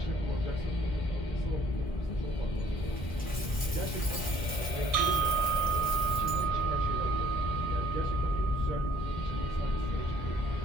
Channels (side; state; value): both; normal; correlation 0.59